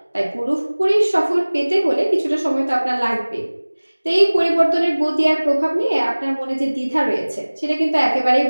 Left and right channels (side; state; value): both; inverted; correlation -1.00